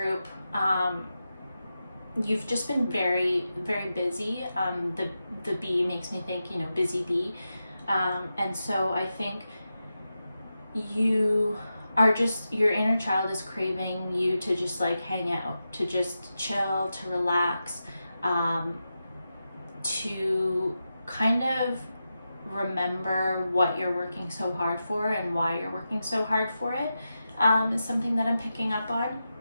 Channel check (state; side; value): inverted; both; correlation -0.90